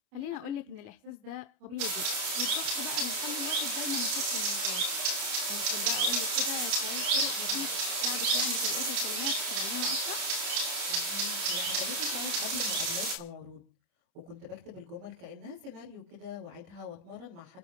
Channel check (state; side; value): late; left; 29 ms